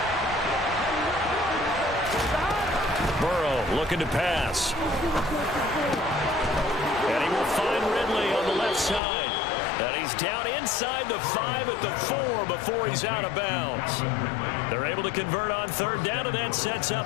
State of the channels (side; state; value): right; drops out; at 9.0 s